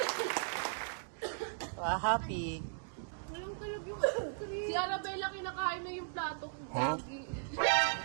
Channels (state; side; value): silent; left; digital silence